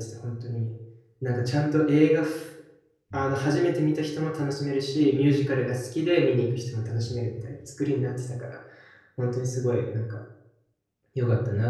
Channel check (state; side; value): identical; both; correlation 1.00